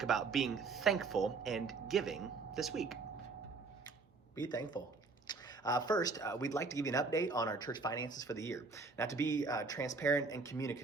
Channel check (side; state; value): left; quieter; 4.2 dB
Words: about being thankful and giving this week. Be thankful. First, we'd like to give you an update on our church finances for the year. Now, to be transparent and